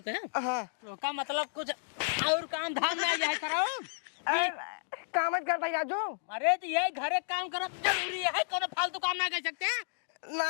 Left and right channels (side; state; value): right; silent; digital silence